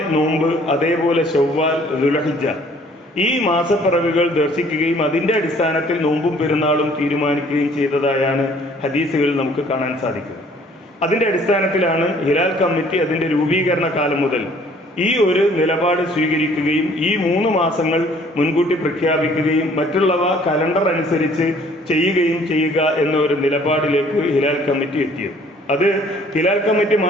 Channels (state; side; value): normal; both; correlation 0.57